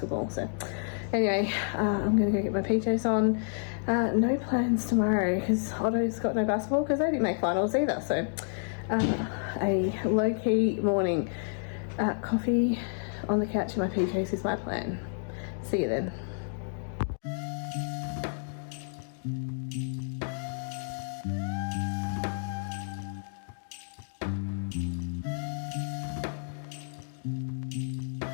so anyway, I'm gonna go get my PJs on. No plans tomorrow because Otto's got no basketball because they didn't make finals either, so a low-key morning. Coffee on the couch in my PJs is my plan. See you then.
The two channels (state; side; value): silent; right; digital silence